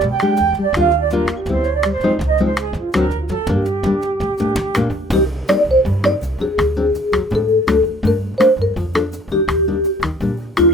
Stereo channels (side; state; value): both; normal; correlation 0.61